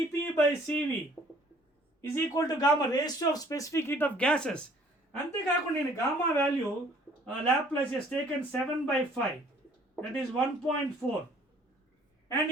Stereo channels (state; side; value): normal; both; correlation 0.57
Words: by Cv is equal to gamma, ratio of specific heat of gases. అంతేకాకుండా నేను gamma value Laplace has taken 7/5, that is 1.4, and